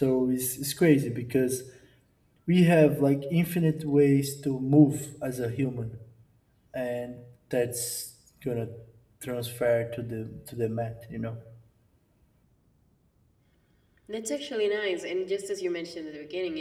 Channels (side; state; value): both; identical; correlation 1.00